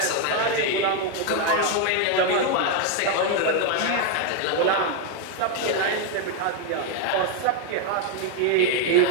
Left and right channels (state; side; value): different; both; correlation 0.01